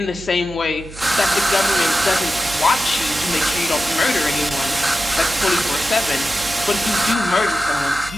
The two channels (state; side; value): noise; right; hum, 16 dB below the sound